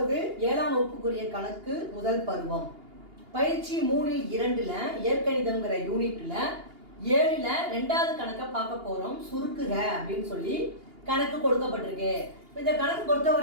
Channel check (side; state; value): left; late; 2.8 ms